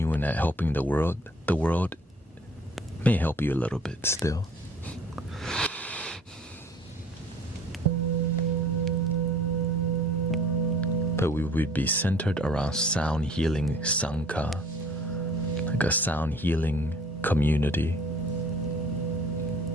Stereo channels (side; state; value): both; normal; correlation 0.52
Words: at helping the world may help you a little bit still. But we would be centered around sound healing Sangha, like a sound healing community.